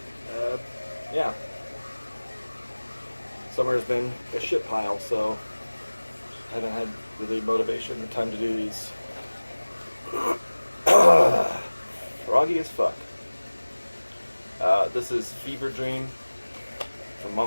Yeah. Summer's been a shit pile, so I haven't had really motivation or time to do these. Froggy as fuck. This is Fever Dream from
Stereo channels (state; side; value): inverted; both; correlation -1.00